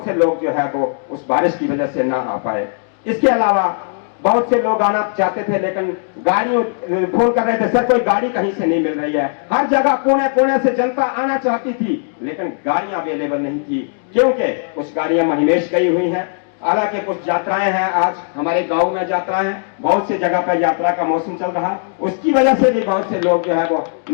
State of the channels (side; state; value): right; silent; digital silence